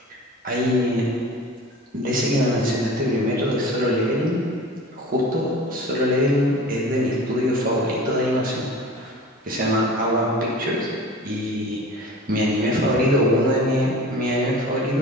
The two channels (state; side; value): normal; both; correlation 0.39